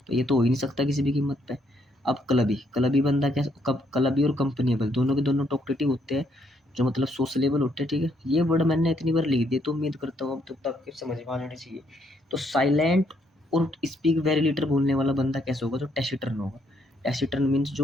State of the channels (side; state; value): both; normal; correlation 0.72